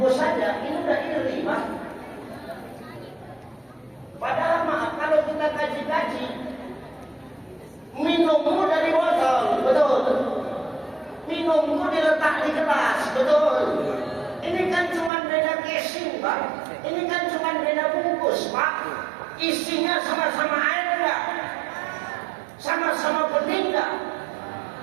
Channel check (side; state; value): left; drops out; at 15.1 s